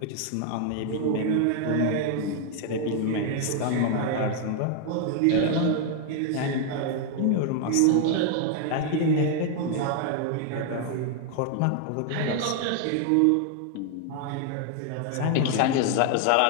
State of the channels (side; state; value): both; different; correlation 0.00